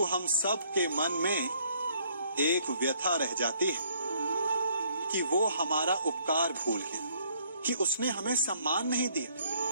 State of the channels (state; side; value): inverted; both; correlation -0.65